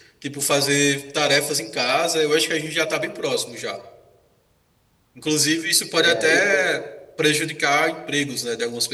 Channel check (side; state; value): both; identical; correlation 1.00